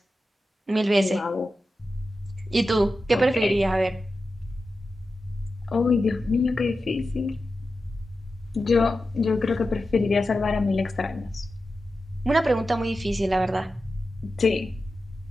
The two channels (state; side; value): normal; both; correlation 0.92